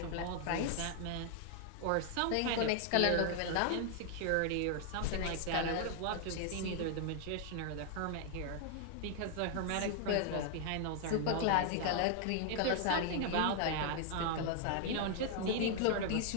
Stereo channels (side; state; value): both; different; correlation 0.00